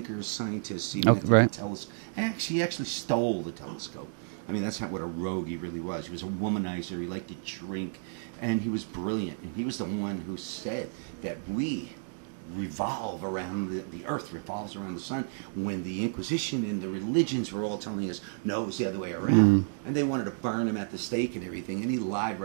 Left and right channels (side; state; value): left; silent; digital silence